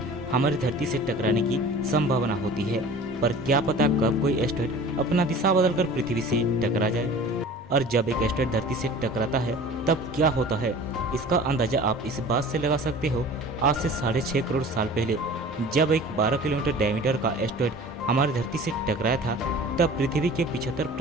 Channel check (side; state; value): both; normal; correlation 0.42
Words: हमारी धरती से टकराने की संभावना होती है, पर क्या पता कब कोई एस्टेरॉयड अपना दिशा बदलकर पृथ्वी से टकरा जाए। और जब एक एस्टेरॉयड धरती से टकराता है तब क्या होता है, इसका अंदाजा आप इस बात से लगा सकते हो। आज से 6.5 करोड़ साल पहले जब एक 12 किलोमीटर डायमीटर का एस्टेरॉयड हमारी धरती से टकराया था, तब पृथ्वी के